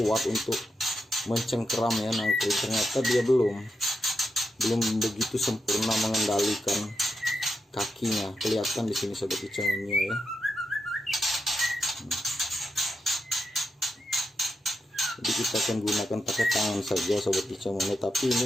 untuk mencengkeram ya nangkring, ternyata dia belum begitu sempurna mengendalikan kakinya. Kelihatan di sini sobat kicauannya ya. Jadi kita akan gunakan pakai tangan saja sobat kicauannya, tapi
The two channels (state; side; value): normal; both; correlation 0.86